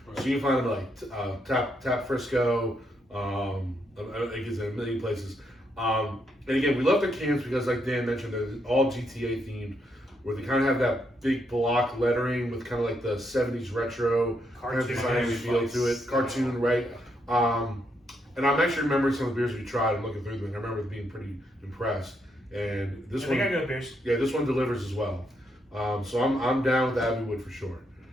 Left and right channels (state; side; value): normal; both; correlation 0.77